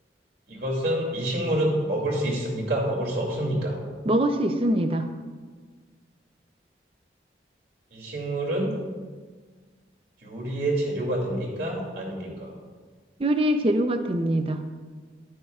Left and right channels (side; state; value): both; normal; correlation 0.60